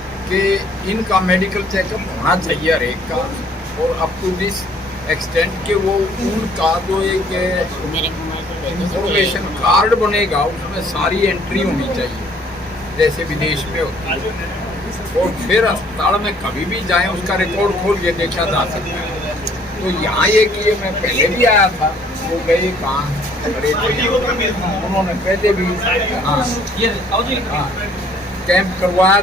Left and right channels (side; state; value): both; normal; correlation 0.60